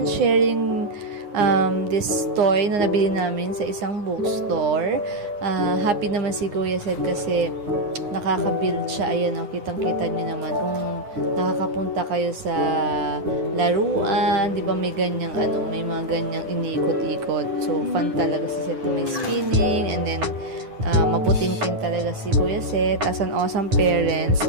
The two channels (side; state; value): left; late; 9.7 ms